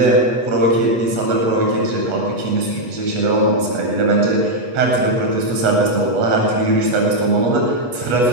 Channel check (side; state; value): left; late; 8.3 ms